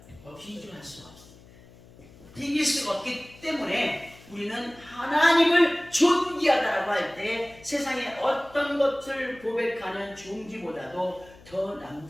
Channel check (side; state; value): left; noise; hum, 23 dB below the sound